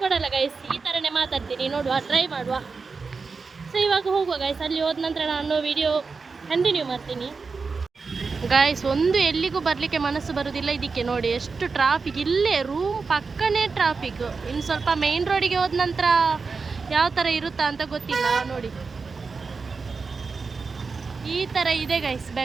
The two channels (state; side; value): quieter; left; 4.6 dB